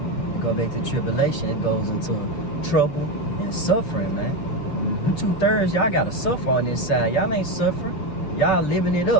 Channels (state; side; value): late; right; 6.6 ms